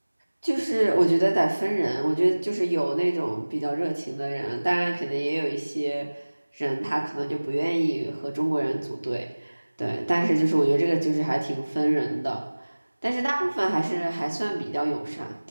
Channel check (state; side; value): inverted; both; correlation -1.00